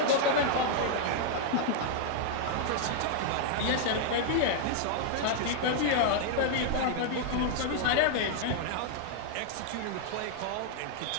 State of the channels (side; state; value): both; different; correlation -0.01